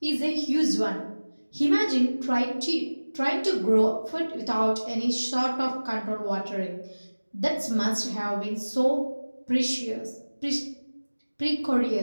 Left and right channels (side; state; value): both; inverted; correlation -1.00